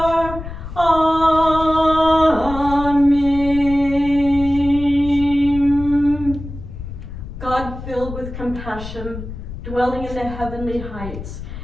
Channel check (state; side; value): noise; left; rumble, 10 dB below the sound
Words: passion, dwelling in the heavenly heights.